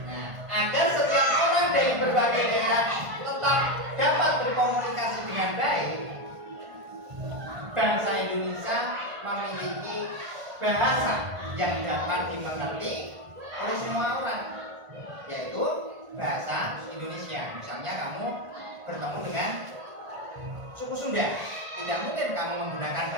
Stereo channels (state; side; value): late; left; 1.5 ms